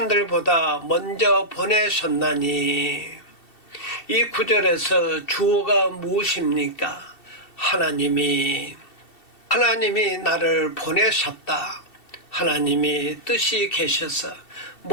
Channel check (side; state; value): right; late; 2.7 ms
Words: 먼저 보내셨나니. 이 구절에서 주어가 무엇입니까? 하나님이 나를 보내셨다. 하나님이 뜻이 계셔서